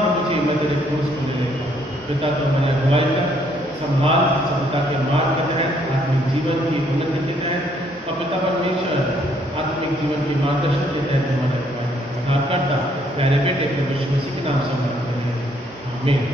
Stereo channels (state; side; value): normal; both; correlation 0.67